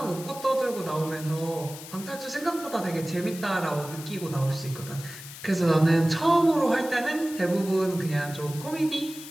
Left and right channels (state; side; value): noise; left; hiss, 13 dB below the sound